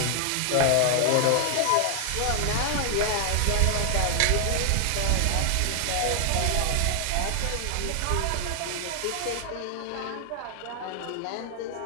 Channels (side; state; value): both; different; correlation 0.00